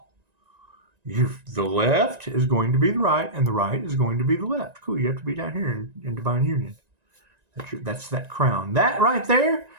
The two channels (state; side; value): late; left; 1.9 ms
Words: The left is going to be the right, and the right is going to be the left. Cool. You have to be down here in divine union. That's that crown. That right there,